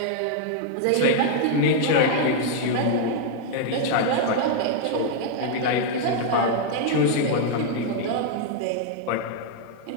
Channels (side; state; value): both; different; correlation 0.00